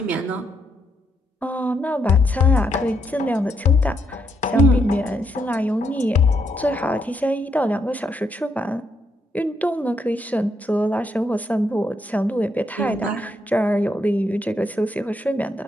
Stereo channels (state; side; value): normal; both; correlation 0.77